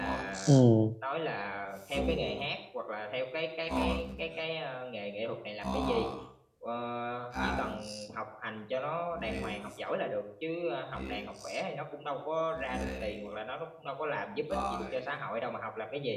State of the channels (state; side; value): identical; both; correlation 1.00